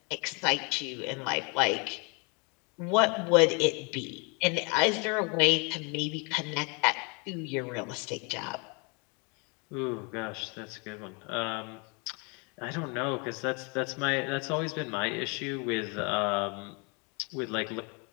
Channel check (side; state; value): right; quieter; 32.8 dB